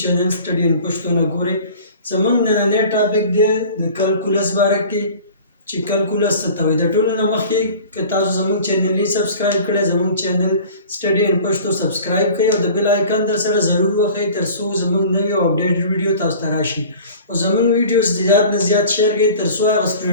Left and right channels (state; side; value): inverted; both; correlation -0.43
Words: چینل سټډي ان پښتو نه ګورئ. زموږ نننی ټاپک دی د کلکولس باره کې چې کلکولس څه ته وایي. د ټولو نه مخکې که تاسو زموږ چینل یې سبسکرایب کړی، زموږ چینل سټډي ان پښتو سبسکرایب کړئ او د بیل آیکن در سره ضرور وښئ تر څو زموږ نوې او اپډیټ ویډیو تاسو ته راشي. او زموږ ویډیوز زیات نه زیات شیر کړئ تر څو هغه